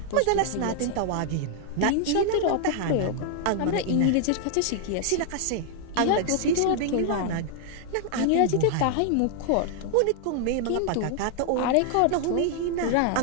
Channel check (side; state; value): both; different; correlation 0.00